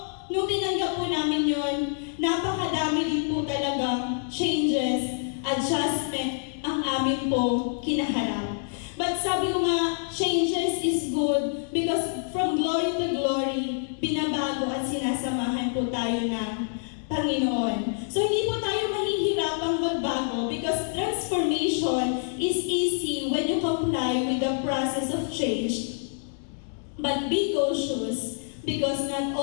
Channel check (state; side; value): silent; right; 60 dB below the other